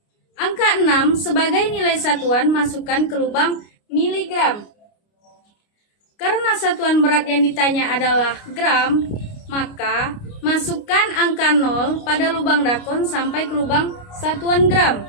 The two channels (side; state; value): right; late; 29 ms